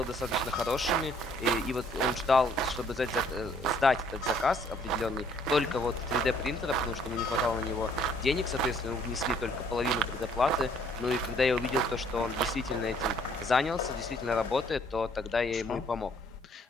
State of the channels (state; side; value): normal; both; correlation 0.62